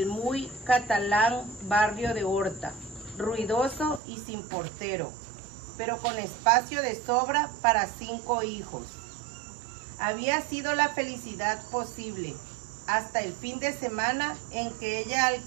muy catalán barrio de Horta, ruidoso y sin portero, pero con espacio de sobra para 5 hijos. Había sido la felicidad posible hasta el fin de semana en que ella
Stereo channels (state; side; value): drops out; left; at 4.0 s